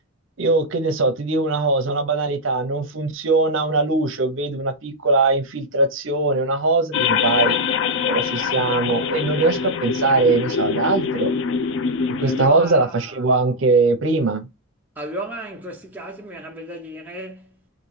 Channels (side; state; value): both; normal; correlation -0.04